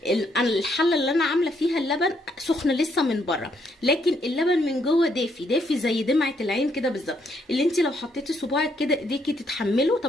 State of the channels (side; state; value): both; normal; correlation 0.73